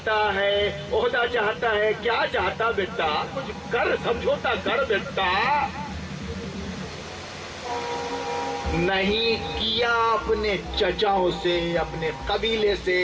ہے، عہدہ چاہتا ہے، کیا چاہتا بیٹا؟ کچھ کر، سمجھوتا کر بیٹا۔ نہیں کیا اپنے چچاؤں سے، اپنے قبیلے سے،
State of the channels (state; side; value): identical; both; correlation 1.00